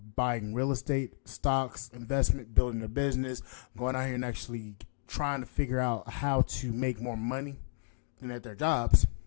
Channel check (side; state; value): right; silent; digital silence